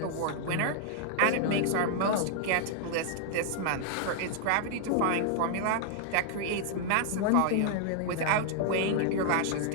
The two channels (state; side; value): different; both; correlation 0.00